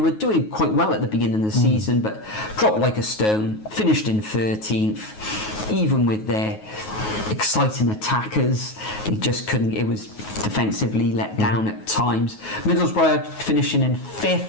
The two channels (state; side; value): late; right; 9.4 ms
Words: doing quite well at the beginning of the season, but dropped like a stone, finished in 13th, even with their exciting attackers. They just couldn't. It was defensively let down at times. Middlesbrough finishing in